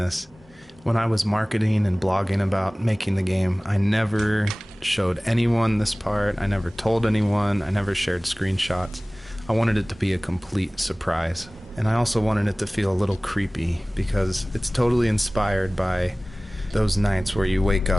When I was marketing and blogging about making the game, I never showed anyone this part. I never told anyone. I never shared screenshots. I wanted it to be a complete surprise. And I also wanted it to feel a little creepy because it's totally inspired by those nights where you wake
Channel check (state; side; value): normal; both; correlation 0.98